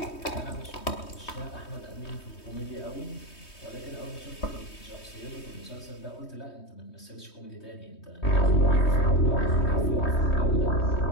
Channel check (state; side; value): late; right; 3.2 ms